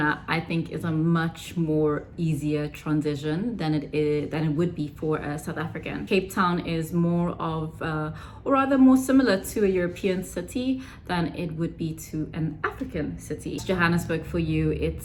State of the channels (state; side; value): identical; both; correlation 1.00